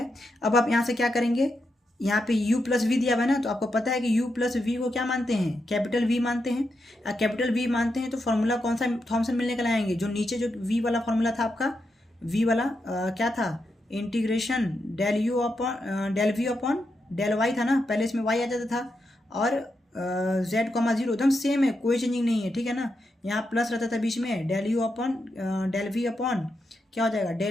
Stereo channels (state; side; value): normal; both; correlation 0.85